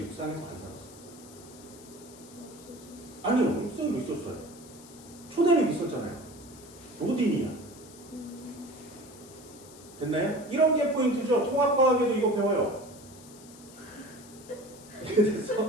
안 살았어? 아니요, 육상이 있었어요. 초대륙 있었잖아요. 로디니아. 됐나요? 이런 게 포인트죠. 통합과학에도 이거 배워요.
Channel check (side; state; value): left; noise; hiss, 20 dB below the sound